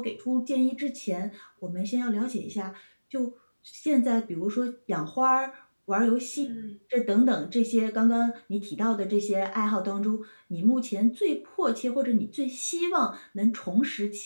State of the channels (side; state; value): both; inverted; correlation -1.00